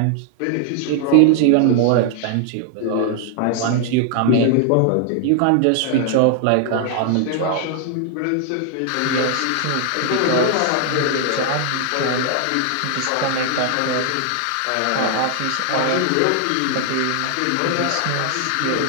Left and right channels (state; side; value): different; both; correlation 0.00